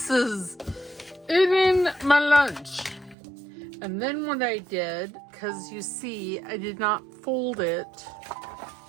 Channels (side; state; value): left; drops out; at 3.2 s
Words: is eating my lunch. And then what I did, because you see, I did not fold it